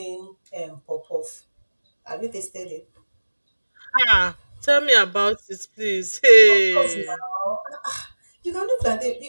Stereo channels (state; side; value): inverted; both; correlation -1.00